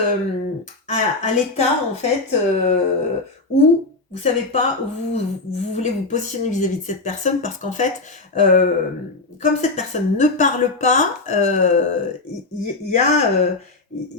à l'état, en fait, où vous ne savez pas où vous voulez vous positionner vis-à-vis de cette personne, parce qu'en fait, comme cette personne ne parle pas, il y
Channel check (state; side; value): quieter; right; 3.3 dB